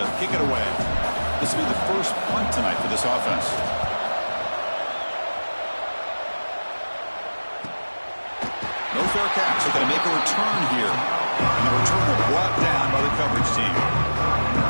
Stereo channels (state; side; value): inverted; both; correlation -1.00